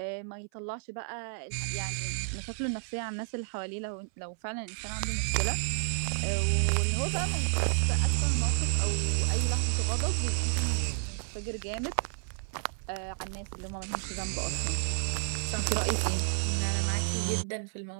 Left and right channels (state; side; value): silent; left; 57 dB below the other